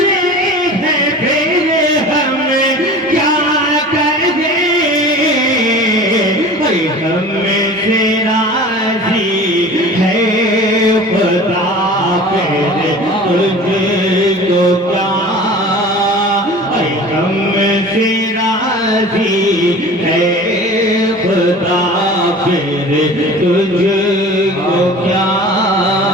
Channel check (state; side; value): normal; both; correlation 0.40